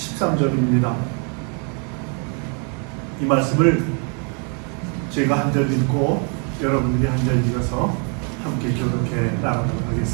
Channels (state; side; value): quieter; left; 38.4 dB